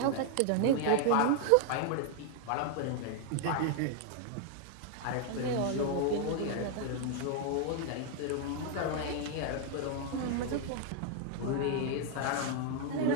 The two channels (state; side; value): different; both; correlation 0.00